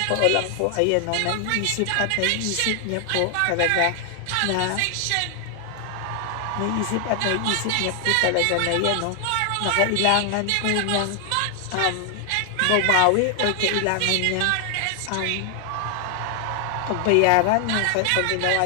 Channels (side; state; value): both; different; correlation 0.00